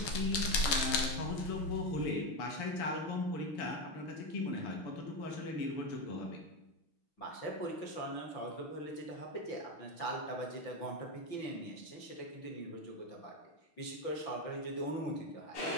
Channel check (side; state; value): right; late; 6.5 ms